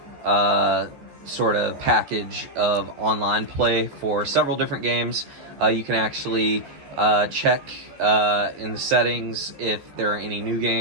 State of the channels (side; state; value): left; late; 14 ms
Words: sort of package of online play for several different games. You can actually check in the settings if there are any new